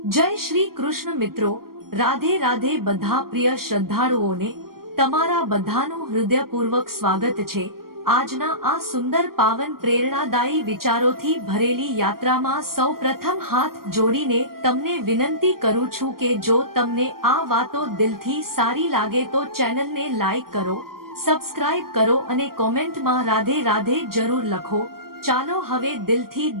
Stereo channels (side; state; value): left; late; 0.93 ms